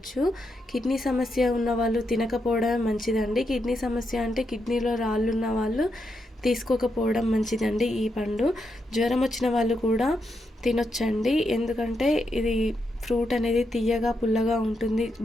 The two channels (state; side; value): normal; both; correlation 0.83